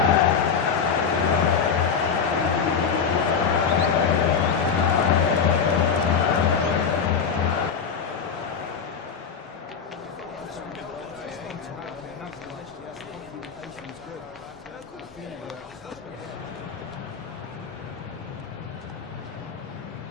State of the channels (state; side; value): quieter; right; 6.4 dB